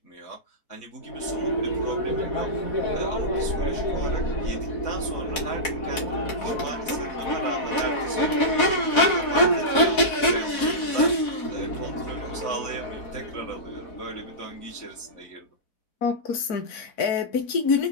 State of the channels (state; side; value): late; right; 4.1 ms